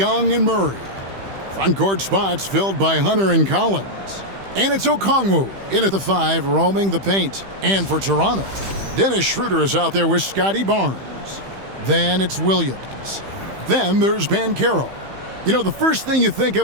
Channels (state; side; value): late; left; 15 ms